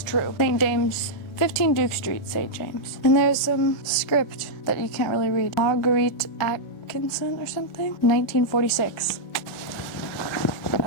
true. St. James, 15 Duke Street, St. James. And there's some script that you can't really read. Marguerite Atkinson or something? 1946.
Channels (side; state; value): right; late; 1.4 ms